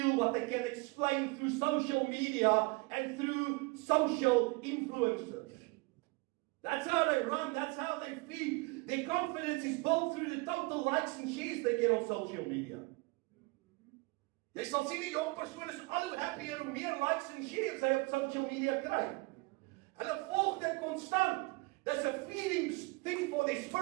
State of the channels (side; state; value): left; quieter; 26.4 dB